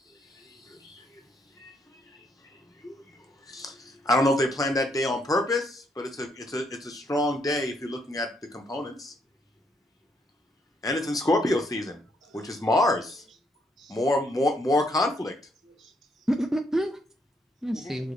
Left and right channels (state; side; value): normal; both; correlation 0.73